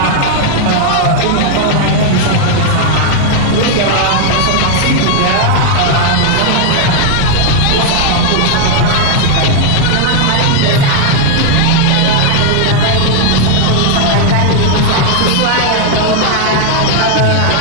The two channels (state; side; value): different; both; correlation 0.00